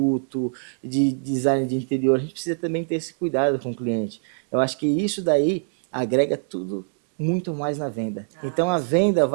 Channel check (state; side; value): silent; left; digital silence